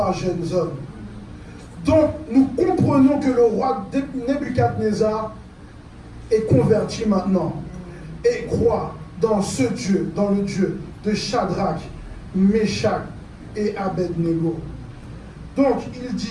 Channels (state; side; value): identical; both; correlation 1.00